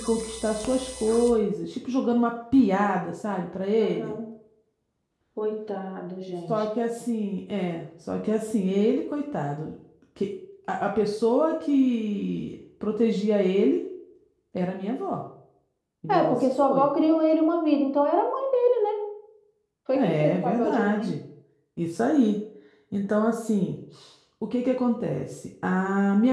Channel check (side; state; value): both; identical; correlation 1.00